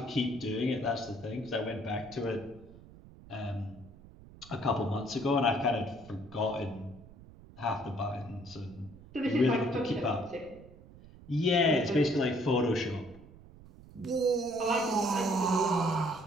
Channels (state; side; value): noise; right; rumble, 20 dB below the sound